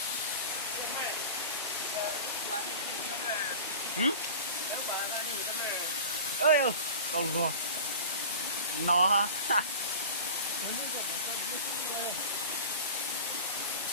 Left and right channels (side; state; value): both; inverted; correlation -0.36